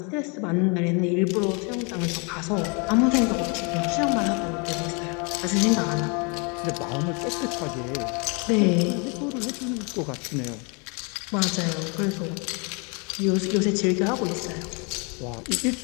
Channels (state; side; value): quieter; right; 33.1 dB